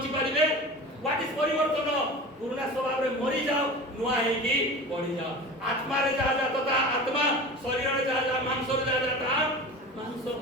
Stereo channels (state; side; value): normal; both; correlation 0.34